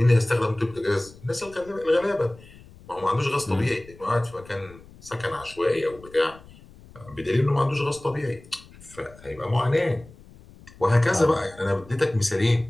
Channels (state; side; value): noise; left; rumble, 22 dB below the sound